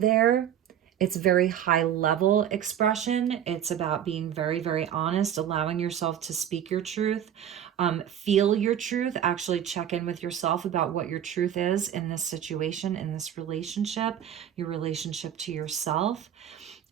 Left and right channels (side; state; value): left; quieter; 10.0 dB